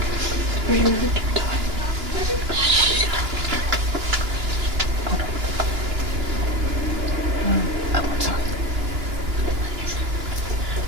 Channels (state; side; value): late; left; 2.9 ms